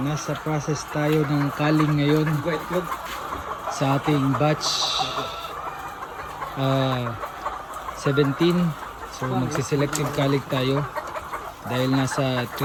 process tayo ng culling ngayon sa ating batch 17. So, magsiselective culling tayo dahil nasa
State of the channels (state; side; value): identical; both; correlation 1.00